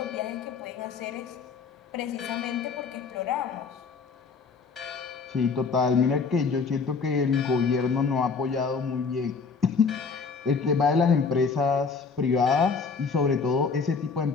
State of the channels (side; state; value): right; quieter; 5.0 dB